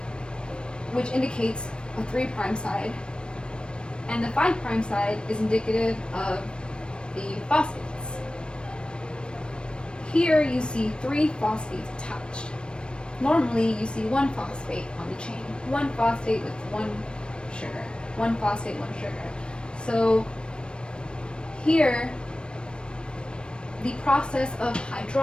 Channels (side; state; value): right; late; 0.054 ms